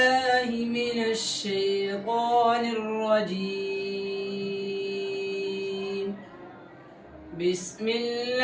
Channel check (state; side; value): identical; both; correlation 1.00